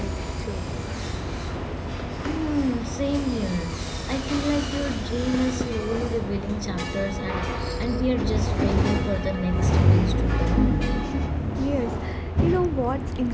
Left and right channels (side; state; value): both; identical; correlation 1.00